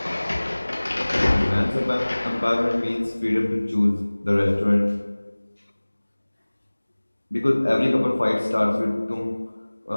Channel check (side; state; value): both; inverted; correlation -1.00